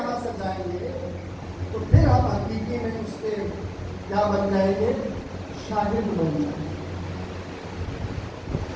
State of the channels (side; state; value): both; identical; correlation 1.00